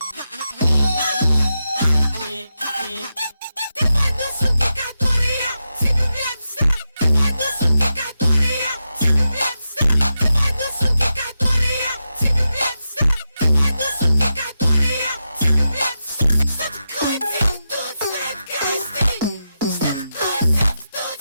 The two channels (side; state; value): both; inverted; correlation -0.88